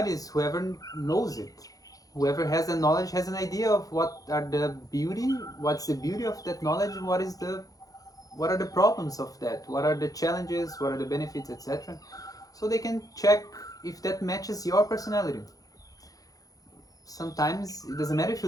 is whoever knows it. Whoever has the knowledge has an idea of what's the beauty of that knowledge, and what are the problems of that, what are the challenges, what are the benefits, etc. So they can check if that matches your personality. Sometimes it doesn't matter if you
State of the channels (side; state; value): right; late; 0.17 ms